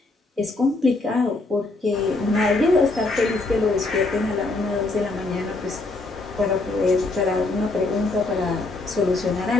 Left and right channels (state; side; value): quieter; right; 3.3 dB